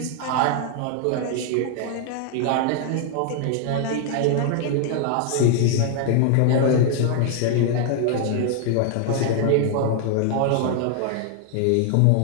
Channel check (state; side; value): different; both; correlation 0.00